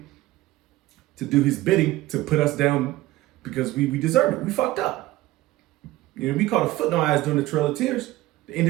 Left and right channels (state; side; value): quieter; left; 16.9 dB